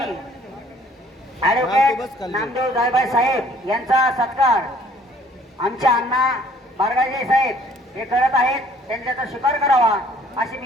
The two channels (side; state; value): both; normal; correlation 0.58